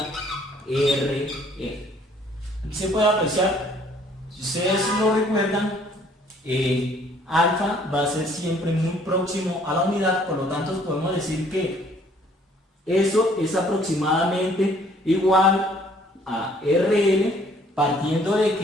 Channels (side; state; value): both; normal; correlation 0.60